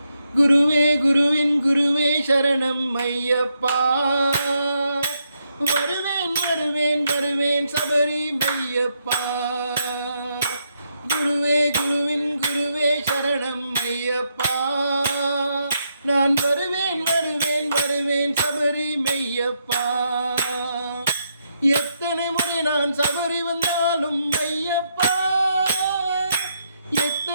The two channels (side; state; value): both; inverted; correlation -0.79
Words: குருவே குருவின் குருவே சரணம் ஐயப்பா. வருவேன் வருவேன் வருவேன் சபரி மையப்பா. குருவே குருவின் குருவே சரணம் ஐயப்பா. நான் வருவேன் வருவேன் வருவேன் சபரி மெய்யப்பா. எத்தனை முறை நான் சபரி வந்தாலும் ஐயப்பா,